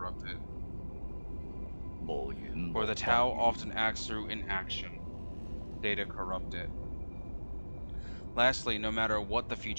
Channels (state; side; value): inverted; both; correlation -1.00